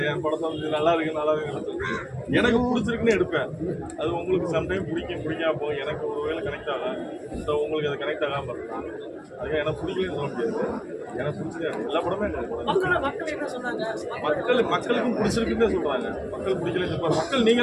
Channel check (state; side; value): identical; both; correlation 1.00